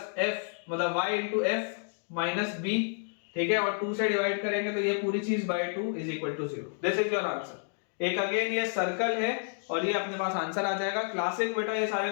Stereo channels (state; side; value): silent; right; digital silence